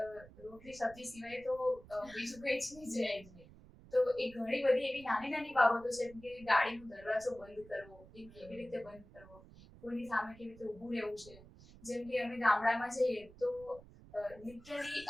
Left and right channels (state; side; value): noise; right; rumble, 20 dB below the sound